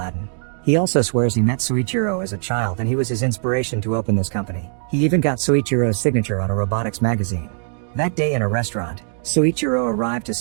He also swears he met Soichiro as a child and he was his inspiration to open this company. He even got Soichiro's signature on a robotics magazine. That day in a restaurant, Soichiro arrived to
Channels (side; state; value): left; silent; digital silence